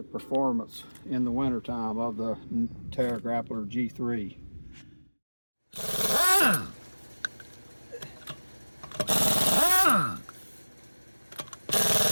performance in the wintertime of the Terra Grappler G3.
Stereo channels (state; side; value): inverted; both; correlation -1.00